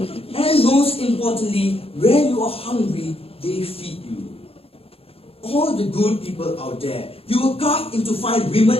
And most importantly, when you are hungry, they feed you. All the good people out there, you were carved into fine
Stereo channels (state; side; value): late; right; 0.28 ms